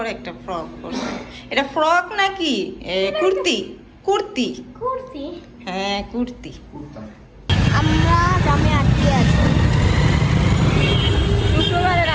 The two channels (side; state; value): both; identical; correlation 1.00